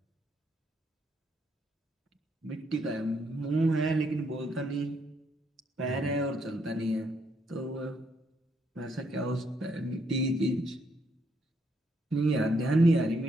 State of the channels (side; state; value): both; normal; correlation 0.74